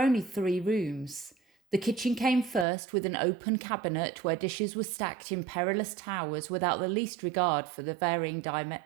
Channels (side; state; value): left; drops out; at 2.7 s